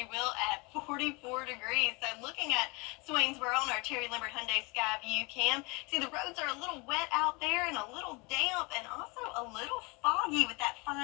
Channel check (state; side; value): quieter; right; 27.8 dB